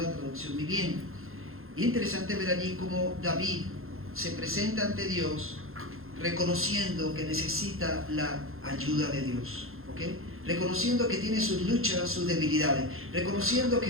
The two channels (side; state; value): left; late; 0.61 ms